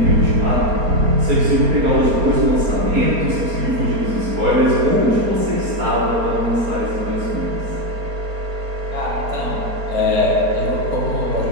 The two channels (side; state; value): left; late; 4.3 ms